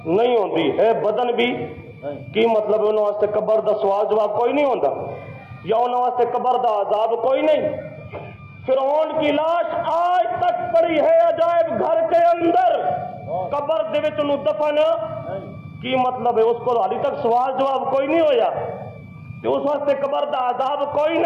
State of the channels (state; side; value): identical; both; correlation 1.00